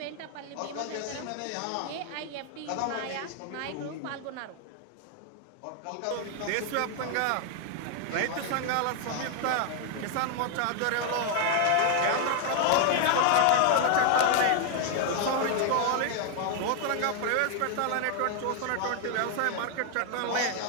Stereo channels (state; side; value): different; both; correlation 0.00